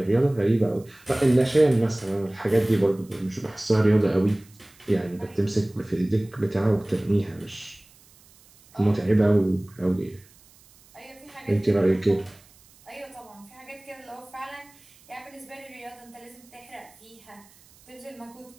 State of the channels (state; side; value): noise; right; hiss, 27 dB below the sound